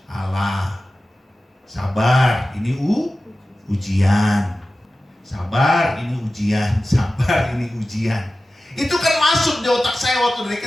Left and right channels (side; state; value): both; normal; correlation 0.95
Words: Allah. Sabar, ini ujian. Sabar, ini ujian. Sabar, ini ujian. Itu kan masuk di otak saya waktu dari